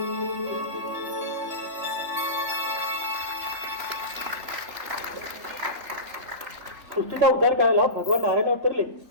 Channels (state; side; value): late; left; 3.3 ms